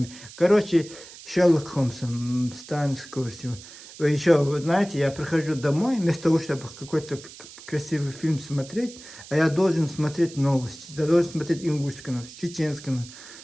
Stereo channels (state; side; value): noise; right; hiss, 17 dB below the sound